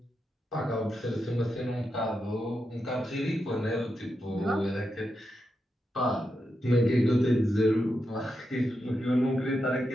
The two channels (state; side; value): normal; both; correlation 0.86